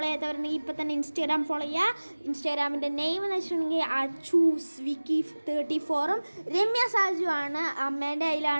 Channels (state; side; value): inverted; both; correlation -1.00